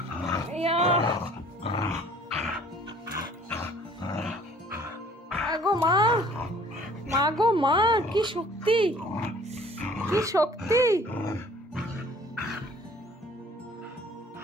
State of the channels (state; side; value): normal; both; correlation 0.54